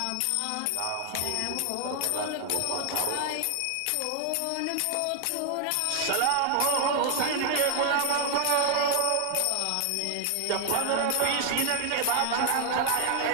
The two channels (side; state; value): both; different; correlation 0.00